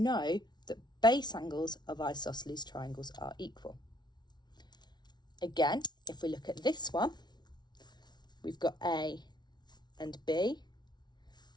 that base angles of isosceles triangles are equal. Again, if we look at this one, we've got A and B,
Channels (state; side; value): late; right; 0.20 ms